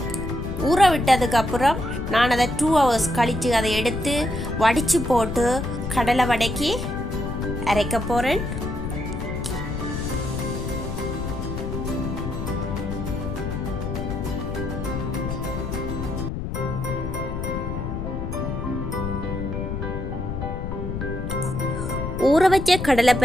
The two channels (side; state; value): left; noise; rumble, 4 dB below the sound